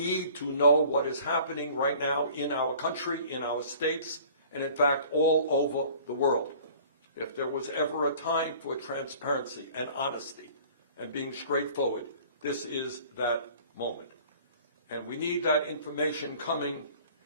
to know what is happening right now in our country, in our states, and in fact all over the world. If there was ever a time for transparency and honesty and being straightforward, this is that moment. And we need that information coming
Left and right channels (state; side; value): inverted; both; correlation -0.49